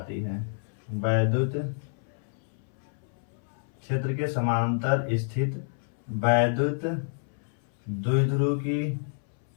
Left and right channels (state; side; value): silent; right; 58 dB below the other